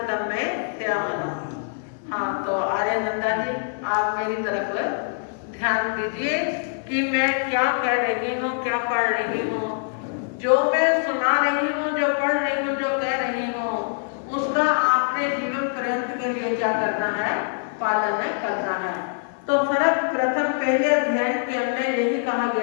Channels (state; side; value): silent; right; 59 dB below the other